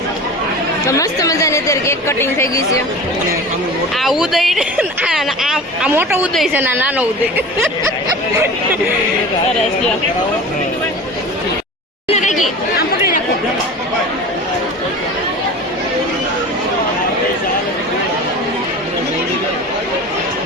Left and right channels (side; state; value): both; normal; correlation 0.35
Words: તો મસ્ત મજાની અત્યારે કેક કટિંગ થઈ ગઈ છે. આ ઉદય આ મોટો ઉદય છે ને આ નાનો ઉદય. સરસ લ્યો. આમ પકડી નાખો.